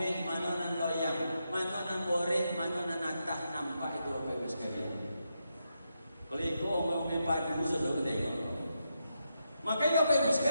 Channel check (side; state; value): both; inverted; correlation -0.84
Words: mana nan loyang, mana nan boreh, mana nan natah, nampak itu Bapak Ibu sekalian. Kalau itu omeh padu sudah ketengok. Makanya Bapak Ibu